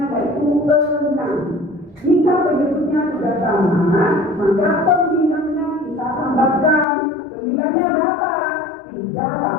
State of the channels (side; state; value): right; drops out; at 6.9 s